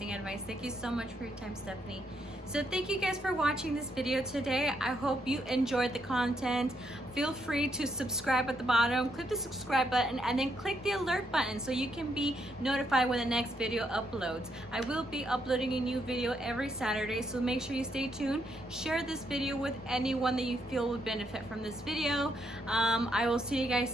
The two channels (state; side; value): normal; both; correlation 0.76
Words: advice. Thank you so much for your time, Stephanie. So thank you guys for watching this video today. I hope you enjoyed the content. Feel free to subscribe at the bottom. Click the subscribe button and then click the alert button so you can be notified when the next video uploads. I will be uploading a new video every Saturday, so make sure you stay tuned. Share this video with anyone that you feel would benefit from this video. I will see you guys